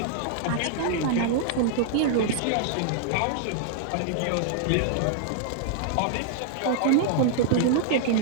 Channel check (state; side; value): different; both; correlation -0.01